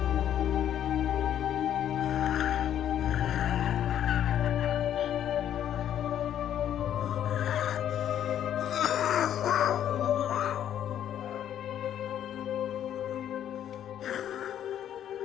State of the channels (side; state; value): right; quieter; 10.5 dB